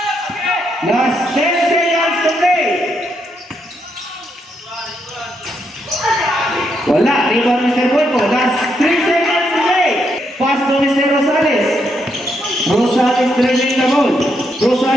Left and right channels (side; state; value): both; normal; correlation 0.79